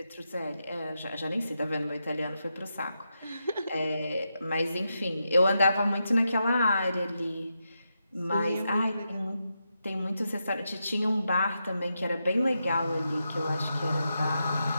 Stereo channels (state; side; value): inverted; both; correlation -0.86